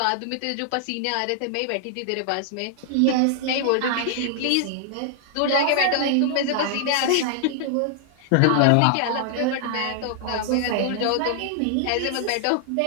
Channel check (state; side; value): different; both; correlation -0.01